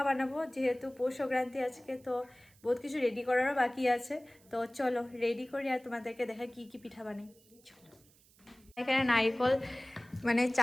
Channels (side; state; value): right; noise; hiss, 29 dB below the sound